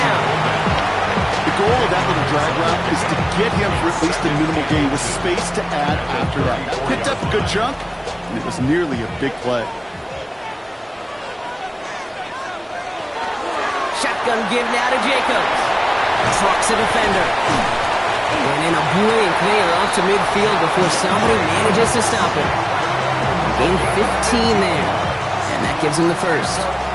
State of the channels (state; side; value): identical; both; correlation 1.00